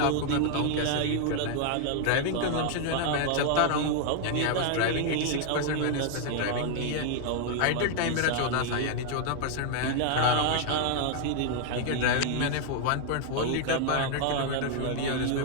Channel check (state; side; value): different; both; correlation 0.00